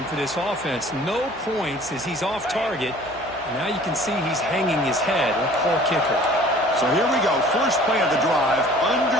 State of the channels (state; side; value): noise; left; hum, 23 dB below the sound